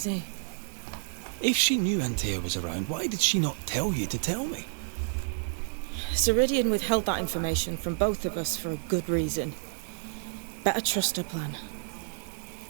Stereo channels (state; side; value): silent; left; 58 dB below the other